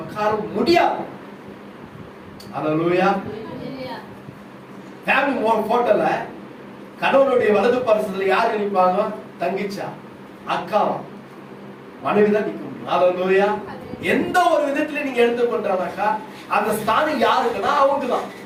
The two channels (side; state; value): both; identical; correlation 1.00